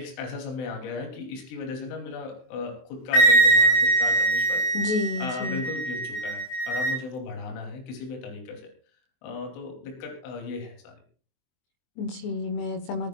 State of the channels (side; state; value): right; late; 23 ms